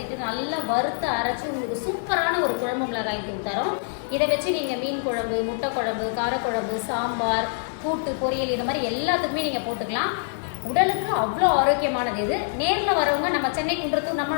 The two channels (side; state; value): right; silent; digital silence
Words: நல்லா வறுத்து அரைச்சி உங்களுக்கு சூப்பரான ஒரு குழம்பு மிளகாய் தூள் தரோம். இதை வச்சு நீங்கள் மீன் குழம்பு, முட்டை குழம்பு, காரக்குழம்பு, சாம்பார், கூட்டு பொரியல் இது மாதிரி எல்லாத்துக்குமே நீங்கள் போட்டுக்கலாம். உடலுக்கு அவ்வளோ ஆரோக்கியமானது இது. நேரில் வரவங்க நம்ம சென்னை குன்றத்தூர்